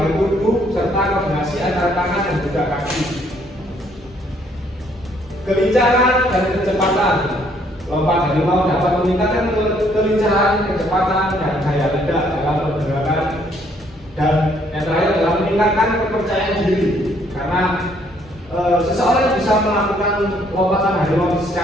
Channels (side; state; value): both; normal; correlation 0.66